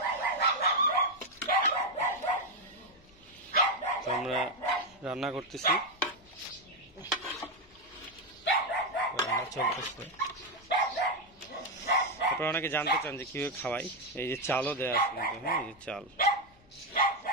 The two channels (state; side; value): noise; left; rumble, 28 dB below the sound